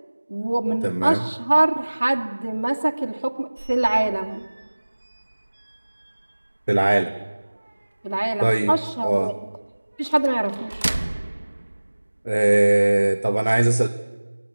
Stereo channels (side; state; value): both; inverted; correlation -1.00